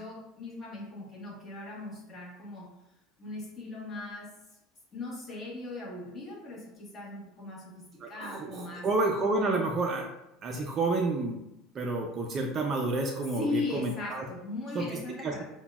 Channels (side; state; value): both; normal; correlation 0.45